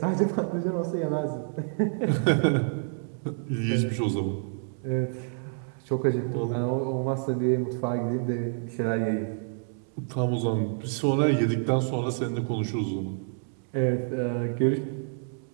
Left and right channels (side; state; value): left; silent; digital silence